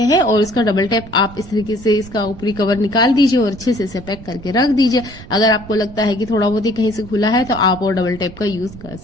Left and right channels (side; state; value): right; noise; rumble, 16 dB below the sound